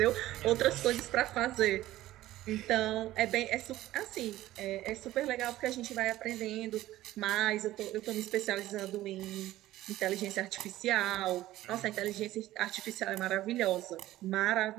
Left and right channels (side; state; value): left; quieter; 15.3 dB